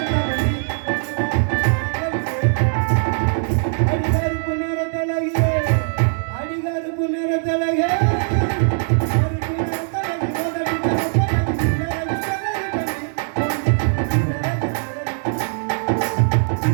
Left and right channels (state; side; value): silent; left; digital silence